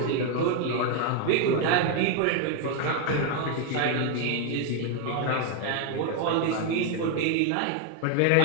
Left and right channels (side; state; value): both; different; correlation 0.01